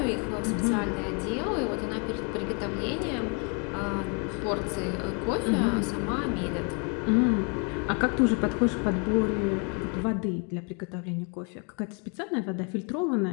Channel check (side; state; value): right; quieter; 36.5 dB